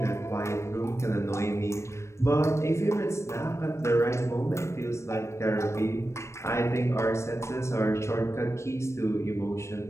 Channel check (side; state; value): right; late; 0.13 ms